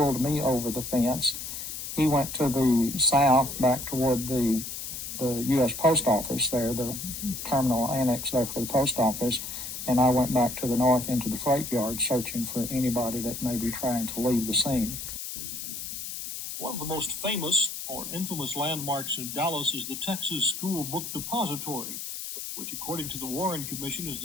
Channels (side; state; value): left; noise; hiss, 7 dB below the sound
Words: me over the fence. He went to the south back toward the U.S. Post Office there, the terminal annex there for the post office, and I went back to the north into the freight yard searching for anybody that may be trying to leave the scene. One of the most famous or infamous landmarks in Dallas is the Texas School Book Depository, which, according to the Warren Commission, is